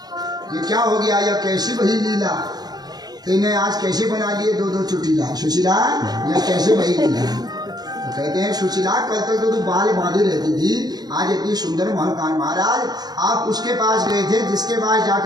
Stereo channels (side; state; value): left; late; 0.19 ms